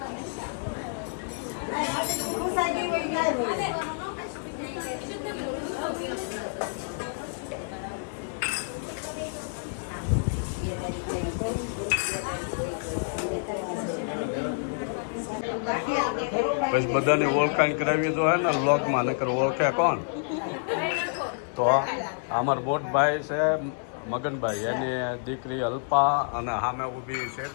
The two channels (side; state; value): right; silent; 59 dB below the other